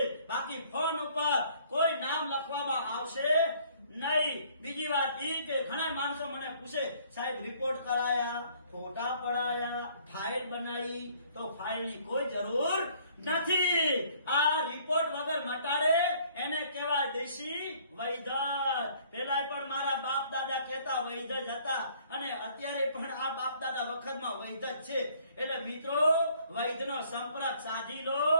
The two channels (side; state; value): both; inverted; correlation -0.59